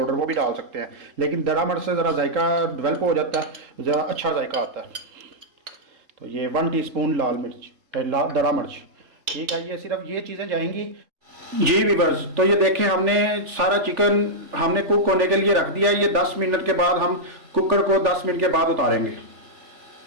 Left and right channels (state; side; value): late; left; 3.4 ms